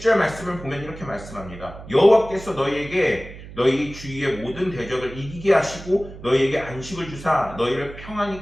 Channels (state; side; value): noise; right; hum, 15 dB below the sound